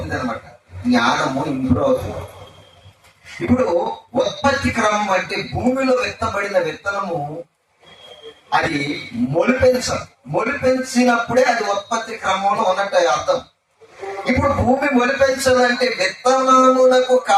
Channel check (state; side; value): identical; both; correlation 1.00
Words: అనమాట. జ్ఞానము ఇంప్రూవ్ అవుతుంది. ఇప్పుడు ఉత్పత్తి క్రమం అంటే భూమిలో విత్తబడిన విత్తనము అది మొలిపించినప్పుడే అది ఉత్పత్తి క్రమంలో ఉన్నట్టు అర్థం. ఇప్పుడు భూమి మొలిపించాలంటే విత్తనములకు